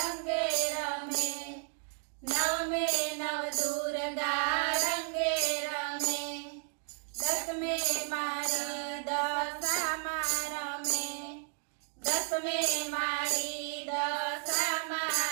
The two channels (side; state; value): left; silent; 56 dB below the other